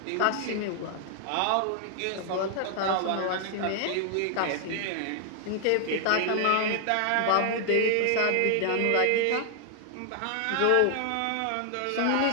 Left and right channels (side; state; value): both; different; correlation 0.00